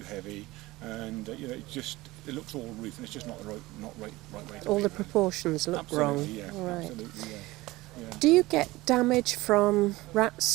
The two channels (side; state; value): left; quieter; 19.6 dB